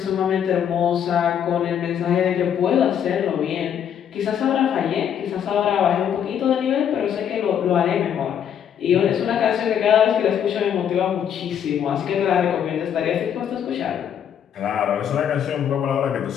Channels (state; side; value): quieter; right; 8.9 dB